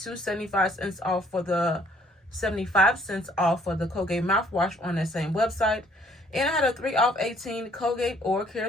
2 75-cents off for the 75-cents off for the Colgate mouthwash on that same website. And I had a 3 off 18 Colgate Oral Care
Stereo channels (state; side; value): normal; both; correlation 0.62